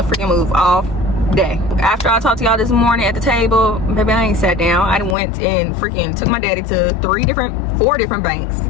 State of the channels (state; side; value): drops out; right; at 5.2 s